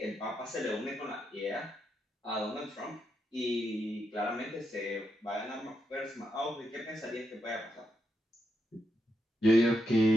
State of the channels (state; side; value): normal; both; correlation 0.83